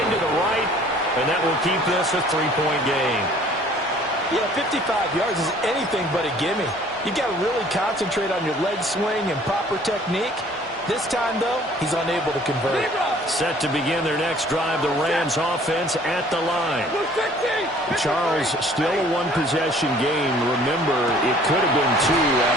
to the right, and that will keep this a 3-point game. Yeah, 55 yards is anything but a gimme. You got to really concentrate on your leg swing and proper technique. This time, though, he's unable to convert. Set to begin their next drive, the Rams offense at the line. Charles, still a one-possession game. Remember, it could have been two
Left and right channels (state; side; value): normal; both; correlation 0.54